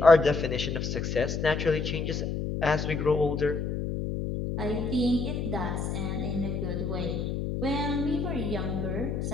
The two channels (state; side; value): noise; left; hum, 2 dB below the sound